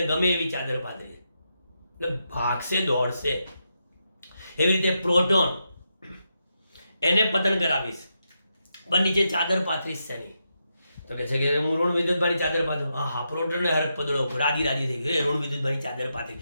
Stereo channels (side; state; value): both; inverted; correlation -0.84